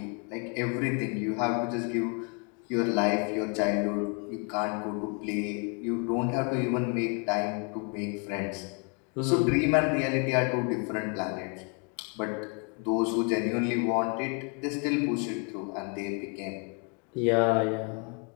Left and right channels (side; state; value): right; quieter; 36.4 dB